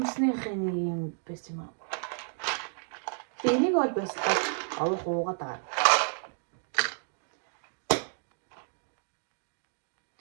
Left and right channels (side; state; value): left; silent; digital silence